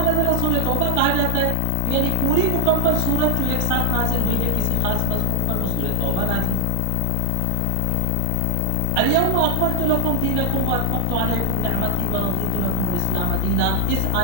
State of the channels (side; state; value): both; different; correlation 0.00